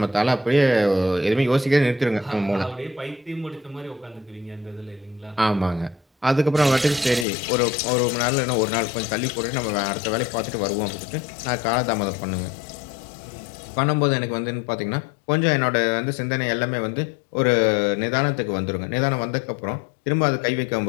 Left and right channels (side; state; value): right; drops out; at 7.2 s